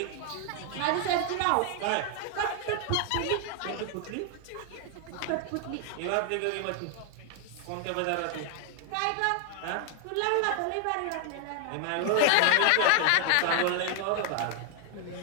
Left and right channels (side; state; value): both; different; correlation 0.00